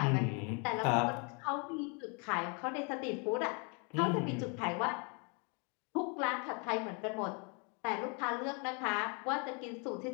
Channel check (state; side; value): quieter; right; 34.7 dB